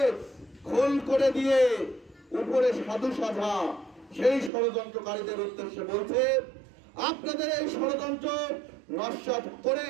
খোল করে দিয়ে উপরে সাধু সাজা সেই ষড়যন্ত্রকারীদের উদ্দেশ্যে বলছে, আপনাদের এই ষড়যন্ত্র নস্যাৎ করে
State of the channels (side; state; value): left; drops out; at 4.5 s